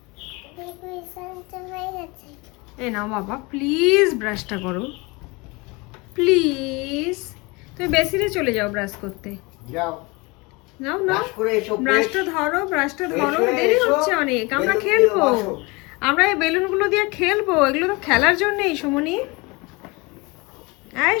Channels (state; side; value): quieter; right; 26.1 dB